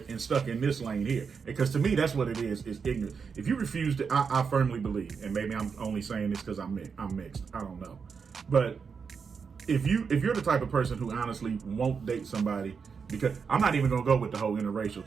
and stuck in this lane here. Because to me, that's what it is ignorance. If you refuse to, I firmly believe, and maybe I'm only saying this because I'm mixed. I don't know. But if you're the type of person who honestly won't date somebody, because I'm not even gonna go with the whole interracial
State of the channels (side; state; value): left; quieter; 5.8 dB